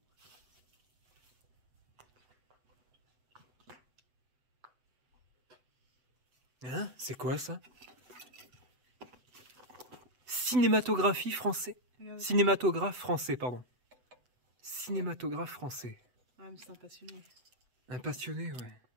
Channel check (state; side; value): late; left; 8.0 ms